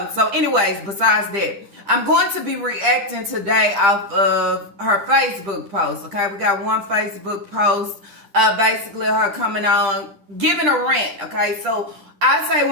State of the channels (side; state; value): left; late; 10 ms